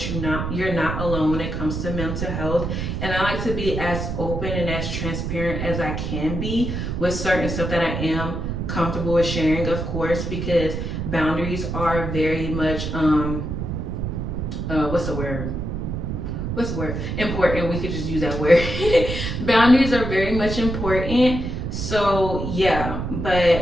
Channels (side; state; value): right; noise; rumble, 3 dB below the sound